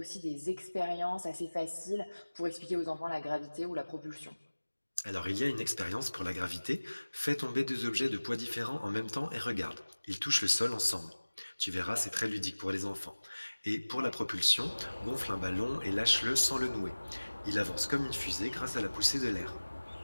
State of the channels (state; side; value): inverted; both; correlation -1.00